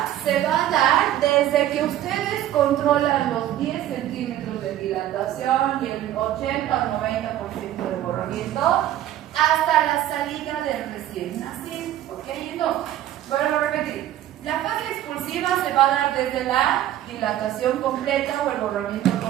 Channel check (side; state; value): left; quieter; 12.6 dB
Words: se va a dar desde que ustedes controlan los 10 centímetros de dilatación y el 80 o 90% de borramiento hasta la salida del recién nacido. ¿Ok? Entonces, vuelvo a repetir. La fase expulsiva se va a dar desde la dilatación completa o el borramiento